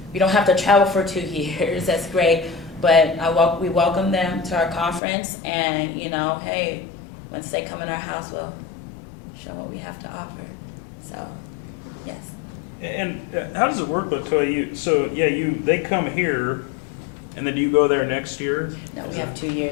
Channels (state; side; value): drops out; right; at 5.0 s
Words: don't have to travel for 2 years. That's great. But we welcome them to our conference, and hey, once they come in our house, we'll show what we have to offer. So, yes. And how does it work, LaToya? They come here, and then do you go there next year? No, we have 2